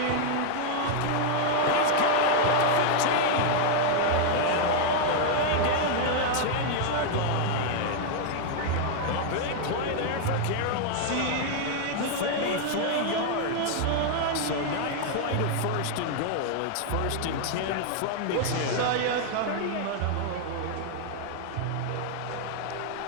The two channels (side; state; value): both; different; correlation 0.00